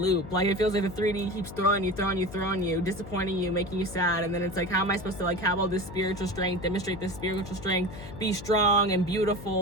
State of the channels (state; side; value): noise; left; hum, 13 dB below the sound